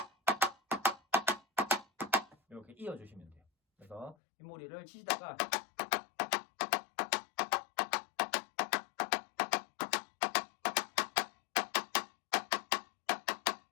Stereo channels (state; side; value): drops out; right; at 4.2 s